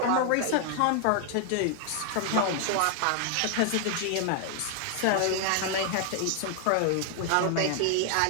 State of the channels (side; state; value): both; different; correlation 0.00